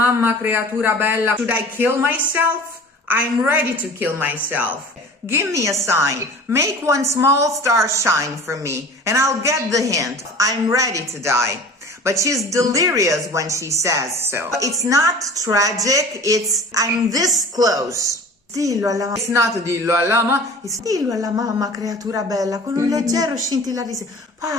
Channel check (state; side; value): normal; both; correlation 0.41